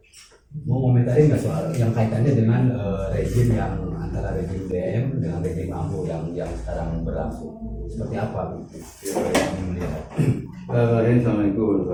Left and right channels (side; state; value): both; identical; correlation 1.00